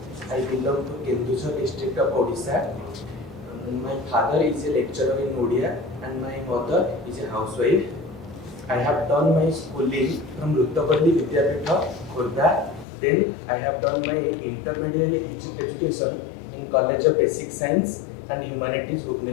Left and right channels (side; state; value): right; drops out; at 12.9 s